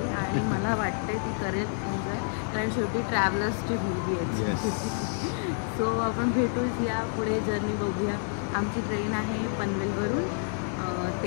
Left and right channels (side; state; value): right; silent; 59 dB below the other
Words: आणि मला वाटते ती करेल एन्जॉय, कारण शेवटी ट्रॅव्हलर्सची मुलगी आहे. सो आपण भेटूच या पुढे जर्नी बघूया. आमची ट्रेन आहे पनवेलवरून.